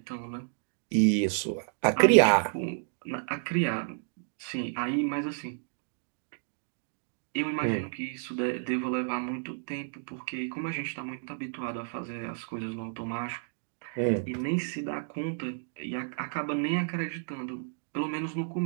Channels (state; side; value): silent; left; digital silence